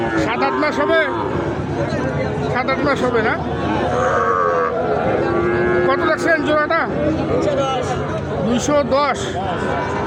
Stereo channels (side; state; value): both; identical; correlation 1.00